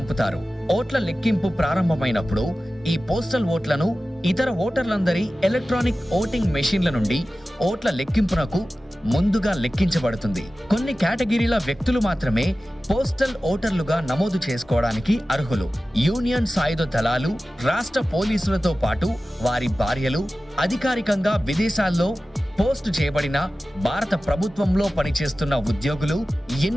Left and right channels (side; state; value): both; normal; correlation 0.95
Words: ఓట్ల లెక్కింపు ప్రారంభమైనప్పుడు ఈ పోస్టల్ ఓట్లను ఇతర ఓటర్లందరి ఎలక్ట్రానిక్ ఓటింగ్ మెషిన్ల నుండి ఓట్ల లెక్కింపునకు ముందుగా లెక్కించబడుతుంది. కొన్ని కేటగిరీల వ్యక్తులు మాత్రమే పోస్టల్ ఓటర్లుగా నమోదు చేసుకోవడానికి అర్హులు. యూనియన్ సాయుధ దళాలు, రాష్ట్ర పోలీసులతో పాటు వారి భార్యలు, అధికారికంగా విదేశాల్లో పోస్ట్ చేయబడిన భారత ప్రభుత్వంలో పనిచేస్తున్న ఉద్యోగులు,